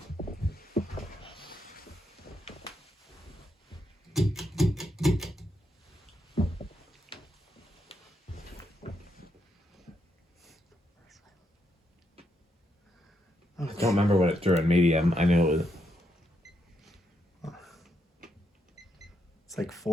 I don't remember what it drew in medium. I knew it was... like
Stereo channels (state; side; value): normal; both; correlation 0.80